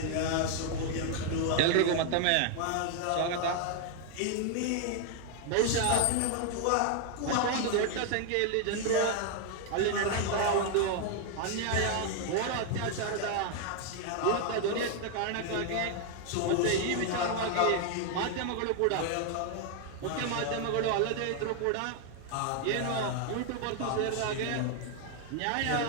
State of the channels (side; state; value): both; different; correlation 0.00